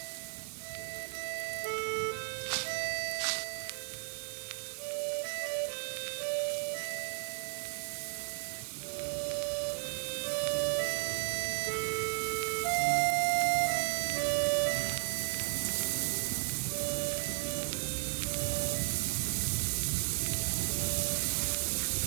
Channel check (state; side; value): silent; left; digital silence